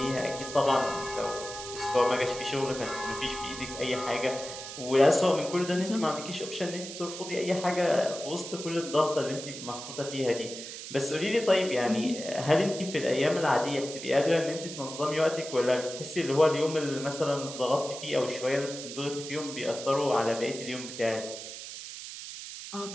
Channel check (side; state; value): right; noise; hiss, 10 dB below the sound